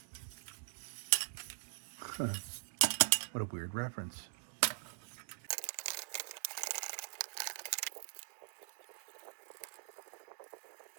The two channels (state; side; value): silent; left; digital silence